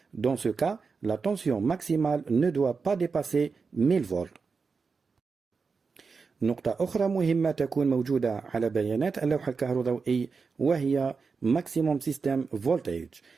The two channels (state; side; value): quieter; left; 4.9 dB